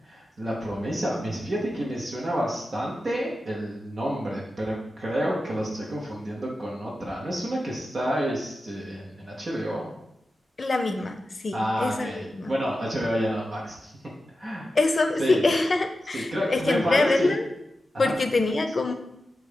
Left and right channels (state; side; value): normal; both; correlation 0.92